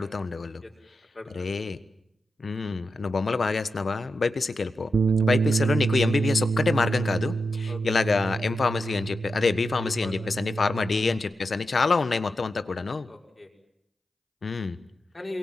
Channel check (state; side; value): normal; both; correlation 0.89